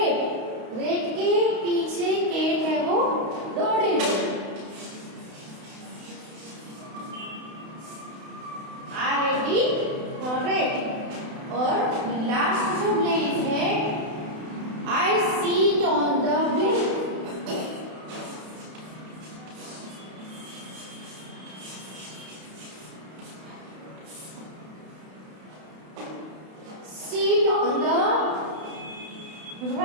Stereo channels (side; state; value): left; late; 32 ms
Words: रेट के पीछे केट है वो दौड़ेगी। रेट। और लास्ट जो ब्लैंक है, I sit on the blank. Sit on the